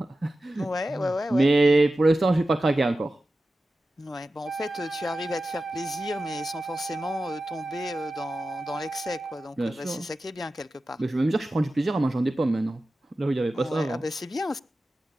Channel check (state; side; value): normal; both; correlation 0.93